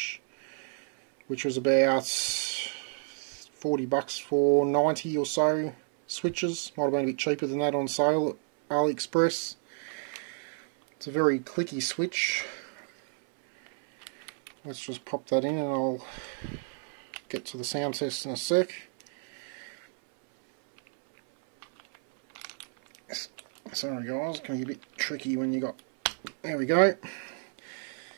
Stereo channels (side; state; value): left; silent; 58 dB below the other